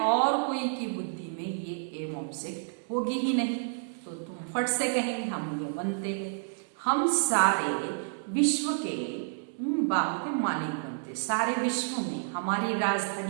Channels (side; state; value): left; silent; 58 dB below the other